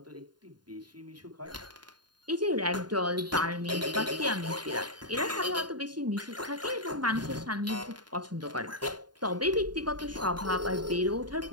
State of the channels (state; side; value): late; left; 0.70 ms